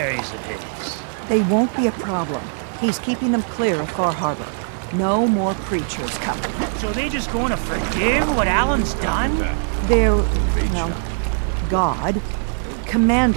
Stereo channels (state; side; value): silent; left; digital silence